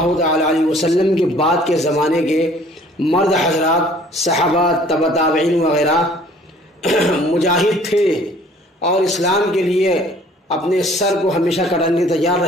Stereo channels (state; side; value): normal; both; correlation 0.55